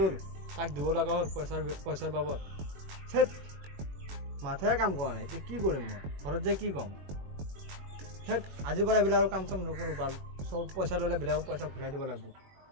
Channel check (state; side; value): late; left; 21 ms